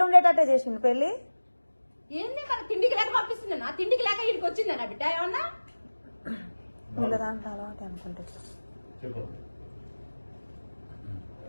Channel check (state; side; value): inverted; both; correlation -1.00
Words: ఉండేటట్టే చేసిండు పెళ్లి ఏంది మన తిండికి లేక పంపిస్తుంది నా తిండికి లేక ఇక్కడికి వచ్చిందా నా బిడ్డ ఏమన్నా వీళ్ళ దాంట్లో అలవాటు అనుకుంటే చెప్పు